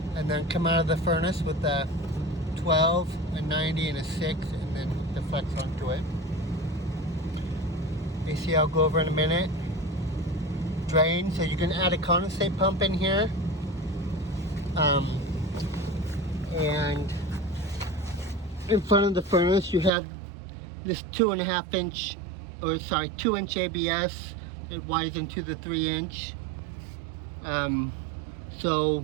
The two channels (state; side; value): drops out; left; at 19.9 s